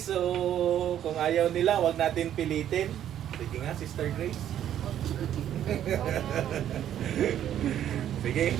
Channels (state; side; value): quieter; left; 10.8 dB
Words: kung ayaw nila, wag natin pilitin. Sige nga, Sister Grace. Sige.